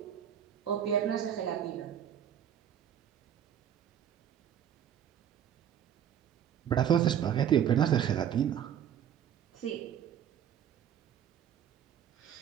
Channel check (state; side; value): quieter; left; 9.4 dB